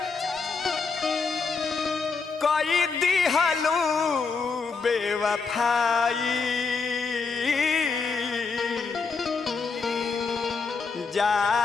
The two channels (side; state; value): right; quieter; 4.7 dB